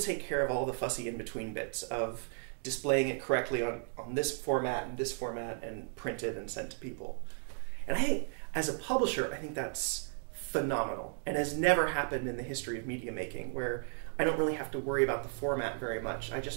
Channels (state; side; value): silent; left; 55 dB below the other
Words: care of all the fussy in-between bits of displaying it correctly on this format and printed and sent to people. And I think, as a publisher, I think that's phenomenal and has never happened in the history of media making, where I don't really have to worry about the format very much. I